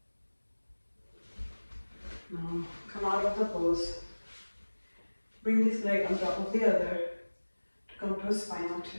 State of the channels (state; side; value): inverted; both; correlation -1.00